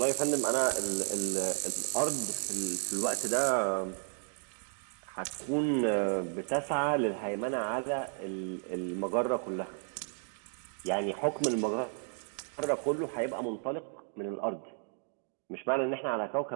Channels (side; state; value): left; silent; 56 dB below the other